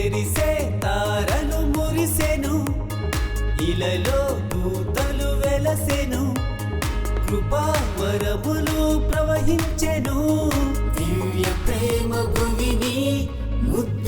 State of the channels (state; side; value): identical; both; correlation 1.00